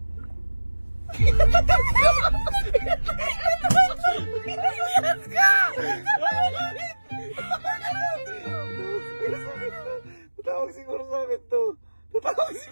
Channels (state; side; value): inverted; both; correlation -1.00